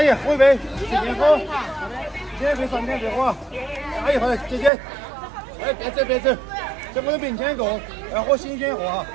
姨，喝一杯，点火，点杯上点别火。阿姨，好的，姐姐，哎，别走别走，在我的面前过，要喝新鲜货哈。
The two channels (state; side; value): drops out; left; at 4.7 s